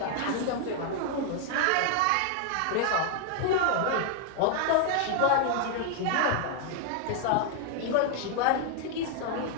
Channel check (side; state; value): both; different; correlation 0.00